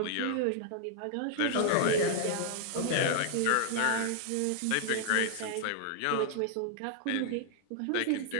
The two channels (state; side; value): different; both; correlation -0.01